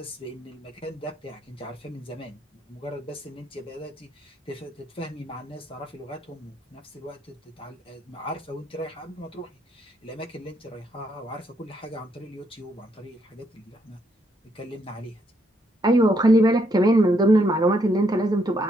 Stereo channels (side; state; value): both; normal; correlation 0.74